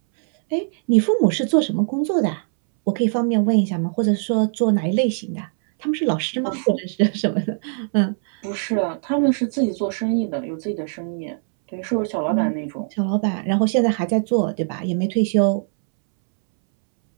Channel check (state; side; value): silent; left; 65 dB below the other